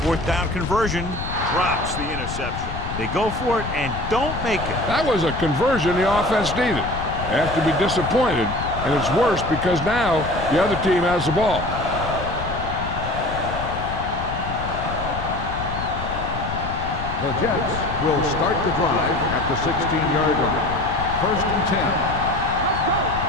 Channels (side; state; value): left; noise; rumble, 7 dB below the sound